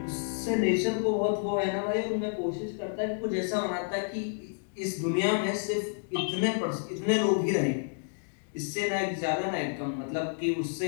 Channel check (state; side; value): silent; right; digital silence